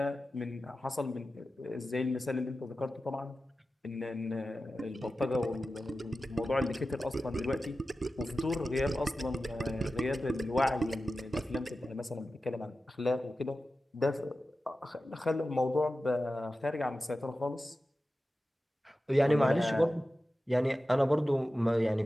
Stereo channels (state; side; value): normal; both; correlation 0.94